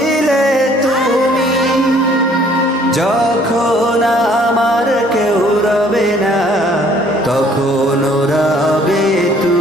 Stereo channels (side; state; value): both; normal; correlation 0.59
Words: তুমি, যখন আমার কেউ রবে না তখন রবে